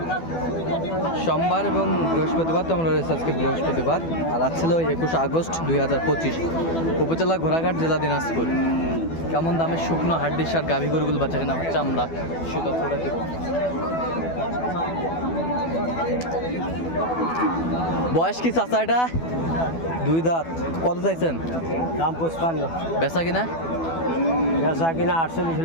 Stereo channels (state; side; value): late; right; 12 ms